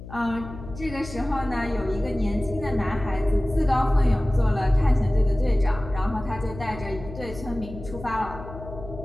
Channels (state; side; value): noise; left; hum, 13 dB below the sound